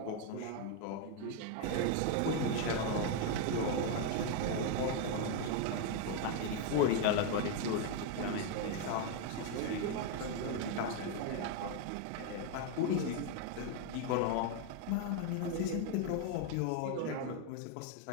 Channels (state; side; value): different; both; correlation 0.01